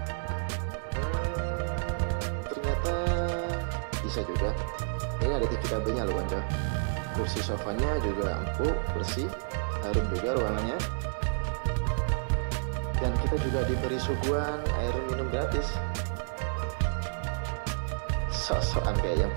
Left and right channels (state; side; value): silent; left; 58 dB below the other